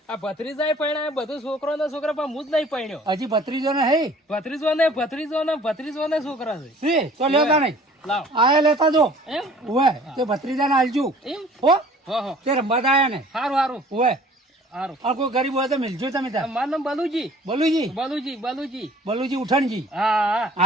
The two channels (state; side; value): normal; both; correlation 0.51